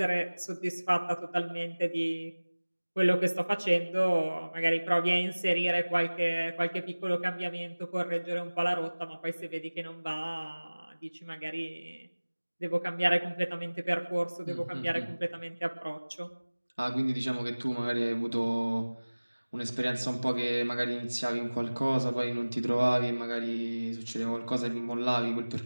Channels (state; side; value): inverted; both; correlation -1.00